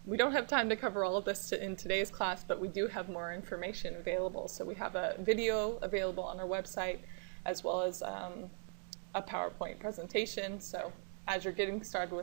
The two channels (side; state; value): left; silent; 52 dB below the other